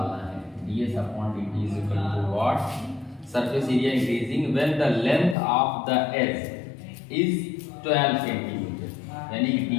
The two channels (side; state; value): right; drops out; at 5.4 s